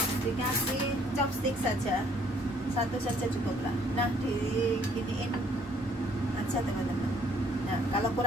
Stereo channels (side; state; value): both; normal; correlation 0.62